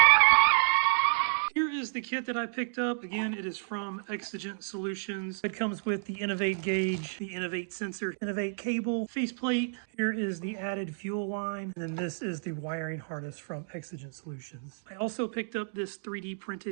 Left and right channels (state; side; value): silent; left; digital silence